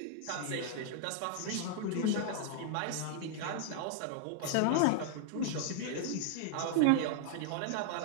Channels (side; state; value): both; different; correlation 0.00